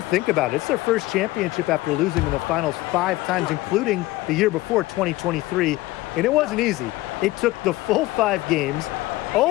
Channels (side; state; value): right; quieter; 18.6 dB